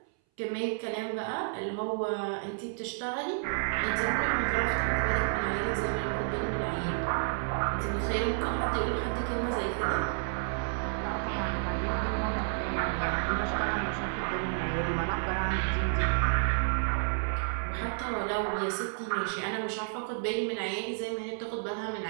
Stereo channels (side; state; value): left; silent; 57 dB below the other